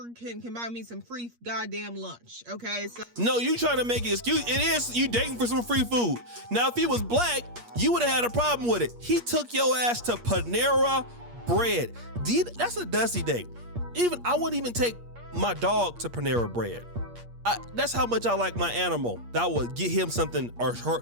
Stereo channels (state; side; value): late; left; 8.5 ms